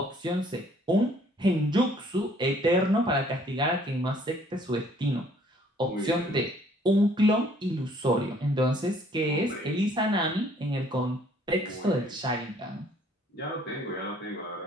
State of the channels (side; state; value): both; normal; correlation 0.60